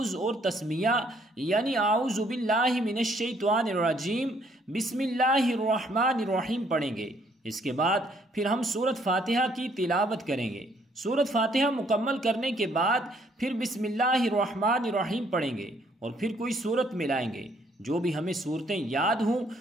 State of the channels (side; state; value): both; normal; correlation 0.66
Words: اور تسمیہ یعنی اعوذ باللہ من الشیطان الرجیم بسم اللہ الرحمن الرحیم پڑھیں گے۔ اس کے بعد پھر ہم سورۃ فاتحہ کی تلاوت کریں گے۔ سورۃ فاتحہ مکمل کرنے کے بعد پھر بسم اللہ الرحمن الرحیم پڑھیں گے اور پھر کوئی سورت ملائیں گے۔ جو بھی ہمیں صورتیں یاد ہوں